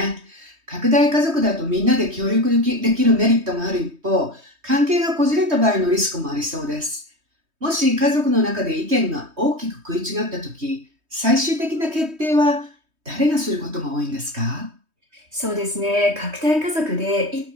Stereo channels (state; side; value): late; left; 3.2 ms